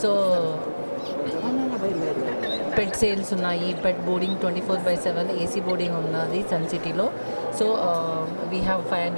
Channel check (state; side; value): inverted; both; correlation -1.00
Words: So పెట్ sales ఉన్నాయి, పెట్ బోర్డింగ్ 24/7 ఏసీ బోర్డింగ్ ఉన్నది sun సిటీలో. So we have